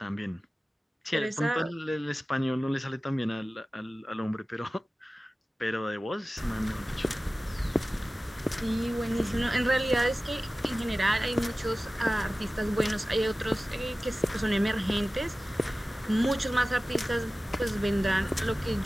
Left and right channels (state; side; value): normal; both; correlation 0.96